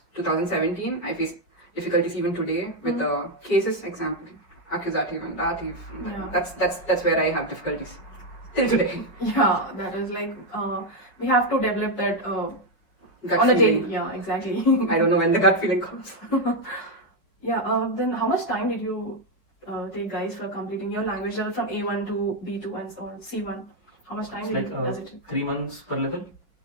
2017. I face difficulties even today with the cases, example, accusative and dative. Yeah. That's where I have difficulties till today. Yeah, that is like we have to develop that Gut on a daily. feeling. Yeah, exactly. I don't know when the gut feeling comes. Yeah. Then how much time did you take, guys, for completing your language level from A1 to B2 and so on, C1? How much time It's like does it take? 3 months per level.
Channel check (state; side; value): late; right; 5.5 ms